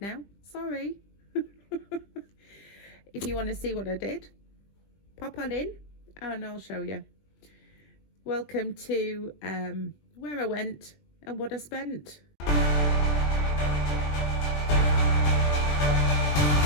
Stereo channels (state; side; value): late; right; 20 ms